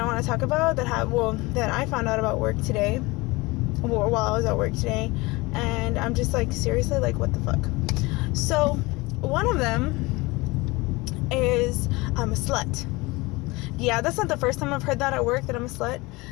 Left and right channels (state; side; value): quieter; right; 23.2 dB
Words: want to talk about that I found out about work today, while I was at work today, and I'm just like, seriously, like, what the fuck? So one of them is I'm a slut. Yeah, that's not the first time I've heard that at work, that I'm a slut,